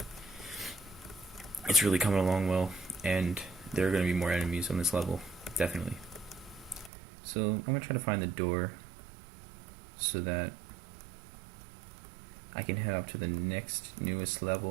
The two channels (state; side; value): drops out; left; at 6.9 s